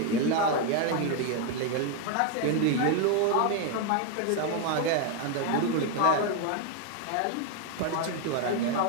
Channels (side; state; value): both; different; correlation 0.01